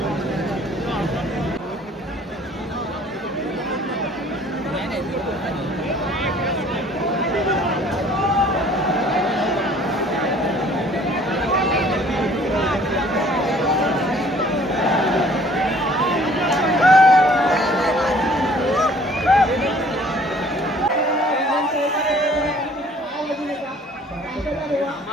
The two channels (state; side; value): normal; both; correlation 0.55